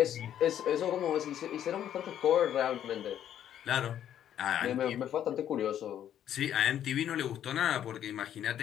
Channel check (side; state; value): right; quieter; 10.5 dB